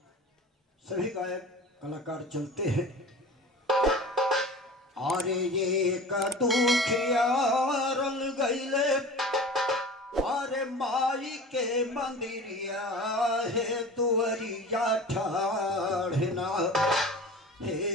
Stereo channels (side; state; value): both; normal; correlation 0.37